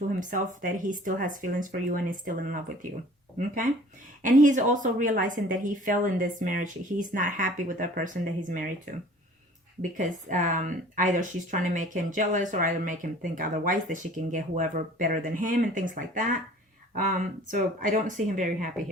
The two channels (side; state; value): both; normal; correlation 0.49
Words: himself that he still has feelings for you and is still in love with you, okay? And he's also realizing that he fell in this marriage. He's not happy with the person that he's married to, because either she's trying to make him jealous, or either make him think otherwise, that she can get whoever better than him and things like that. So I don't see him very happy